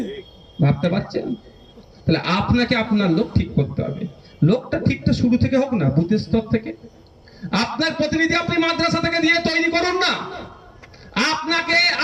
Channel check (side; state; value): both; identical; correlation 1.00